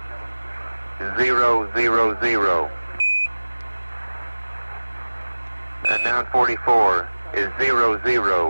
000. And 944 is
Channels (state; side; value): inverted; both; correlation -1.00